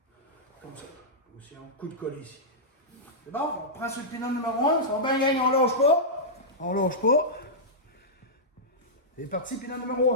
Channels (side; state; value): both; normal; correlation -0.12